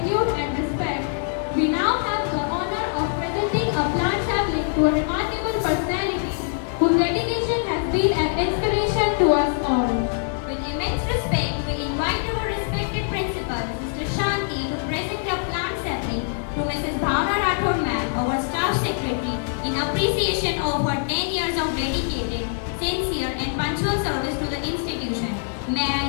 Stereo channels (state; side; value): silent; right; digital silence